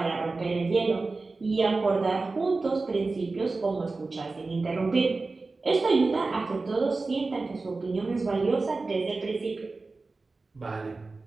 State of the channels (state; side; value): quieter; left; 3.7 dB